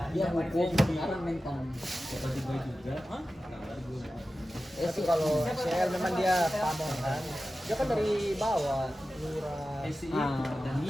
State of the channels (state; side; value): normal; both; correlation 0.94